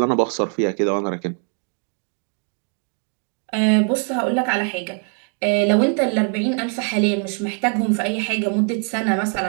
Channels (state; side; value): quieter; left; 39.9 dB